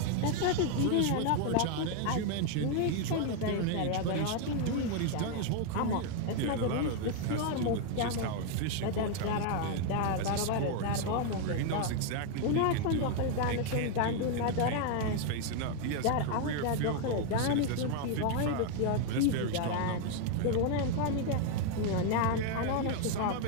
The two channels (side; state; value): both; different; correlation 0.01